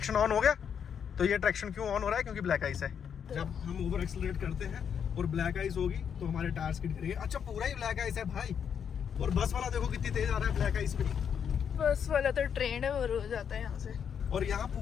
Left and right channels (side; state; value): right; quieter; 7.7 dB